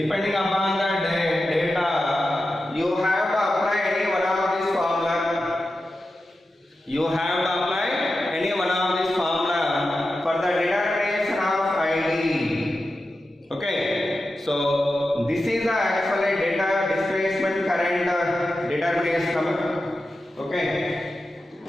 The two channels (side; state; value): both; normal; correlation 0.91